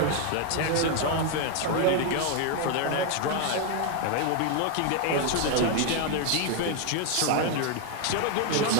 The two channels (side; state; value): both; different; correlation 0.01